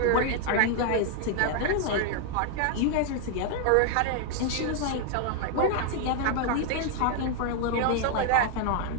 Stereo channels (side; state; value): both; different; correlation 0.00